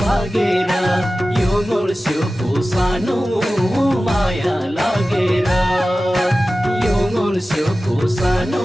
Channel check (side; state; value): both; normal; correlation 0.95